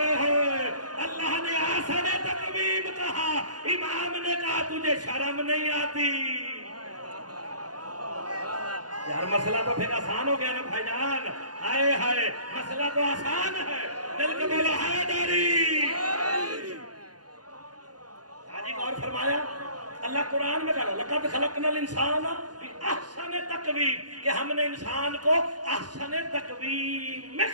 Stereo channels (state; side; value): late; left; 0.69 ms